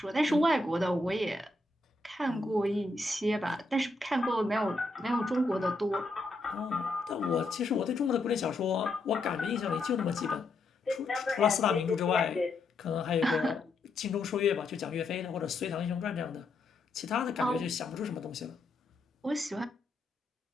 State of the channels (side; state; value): right; quieter; 3.1 dB